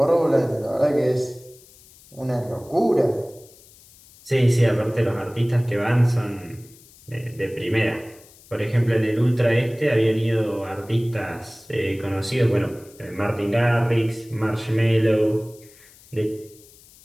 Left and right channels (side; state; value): left; noise; hiss, 25 dB below the sound